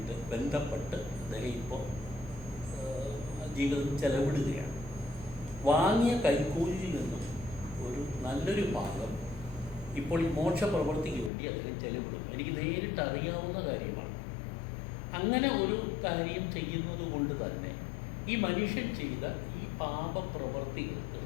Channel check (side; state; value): right; drops out; at 11.3 s